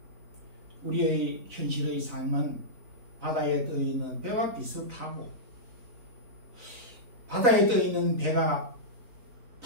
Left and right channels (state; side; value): late; left; 4.0 ms